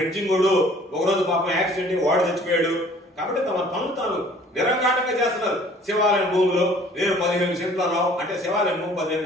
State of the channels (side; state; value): both; normal; correlation 0.53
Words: వాడు ఒకరోజు పాపం యాక్సిడెంట్ వాడు చచ్చిపోయాడు. కాబట్టి తమ పనులు తాను నిరంకాటంగా చేస్తున్నారు. శివాలయం భూములు నేను 15 సెంట్లలో అంటే శివాలయం భూమి